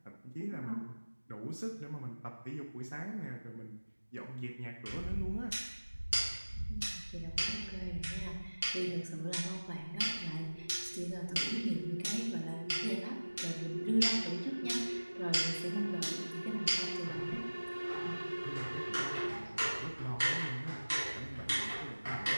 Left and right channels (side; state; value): both; inverted; correlation -1.00